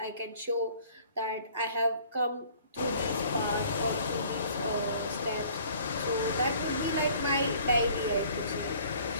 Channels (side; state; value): both; inverted; correlation -0.54